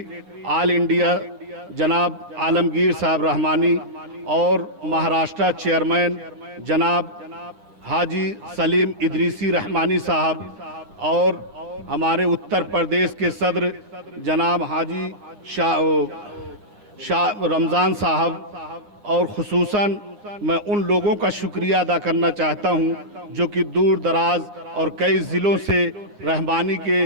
ऑल इंडिया जनाब आलमगीर साहब रहमानी और महाराष्ट्र चेयरमैन जनाब हाजी सलीम इदरीसी रहमानी साहब और हमारे उत्तर प्रदेश के सदर जनाब हाजी शाह रमज़ान साहब और खुसूसन मैं उन लोगों का शुक्रिया अदा करना चाहता हूं जो कि दूर दराज और कई ज़िलों से रहमानी के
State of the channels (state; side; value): late; left; 9.5 ms